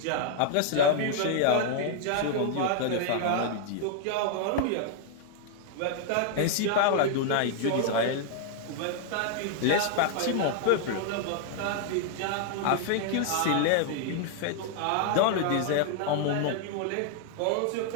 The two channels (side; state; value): both; different; correlation 0.00